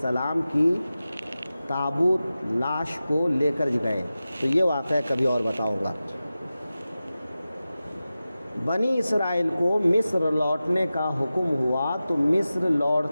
کی تابوت لاش کو لے کر گئے، تو یہ واقعہ کبھی اور بتاؤں گا۔ بنی اسرائیل کو مصر لوٹنے کا حکم ہوا، تو مصر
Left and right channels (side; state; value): both; inverted; correlation -0.95